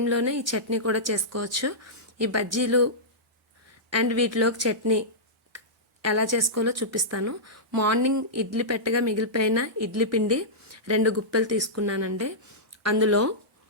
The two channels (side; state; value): both; normal; correlation -0.13